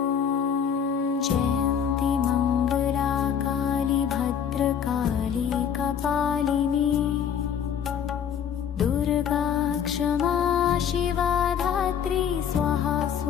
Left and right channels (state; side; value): quieter; right; 8.0 dB